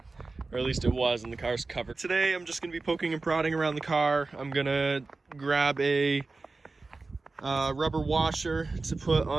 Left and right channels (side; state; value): left; quieter; 3.7 dB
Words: or at least it was, and the car's covered. Today, I'm just gonna be poking and prodding around the car. I'm gonna grab a rubber washer to put